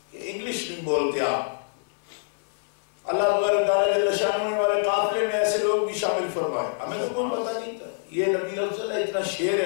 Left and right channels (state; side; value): silent; right; 56 dB below the other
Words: کہ انگلش نہیں بولتے آپ. اللہ تبارک تعالیٰ جل شانہ نے ہمارے قافلے میں ایسے لوگ بھی شامل فرمائے, ہمیں تو کوئی پتہ نہیں تھا. یہ نبی افضل ہے, اتنا شیر